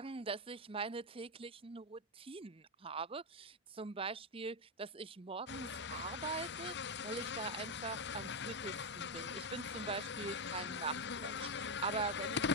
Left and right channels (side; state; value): both; normal; correlation 0.05